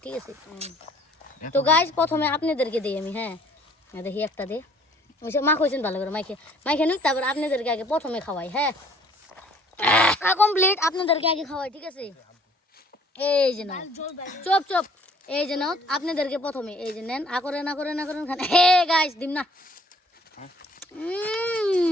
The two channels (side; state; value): both; normal; correlation 0.58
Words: ঠিক আছে, তো গাইস প্রথমে আপনাদেরকে দিই আমি। হ্যাঁ দেখি একটা দে মা কইছেন ভালো করে মাইকে নুক, তারপর আপনাদেরকে আগে প্রথমে খাওয়াই। হ্যাঁ কমপ্লিট, আপনাদেরকে আগে খাওয়াই। ঠিক আছে, এই যে না চপ এই যে নাও আপনাদেরকে প্রথমে এই যে নেন, না করেন খান। হে গাইস দিম না,